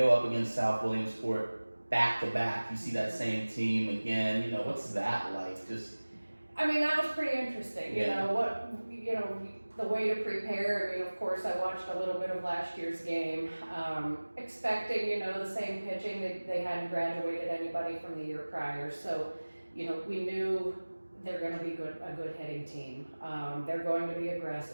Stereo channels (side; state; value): both; inverted; correlation -1.00